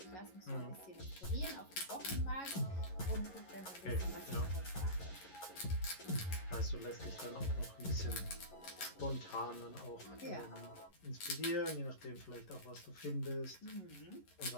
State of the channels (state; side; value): late; right; 11 ms